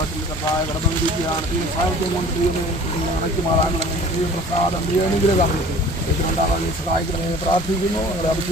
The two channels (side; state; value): both; normal; correlation 0.46